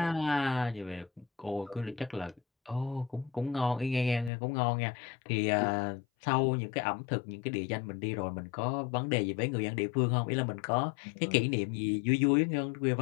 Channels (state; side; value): drops out; right; at 4.3 s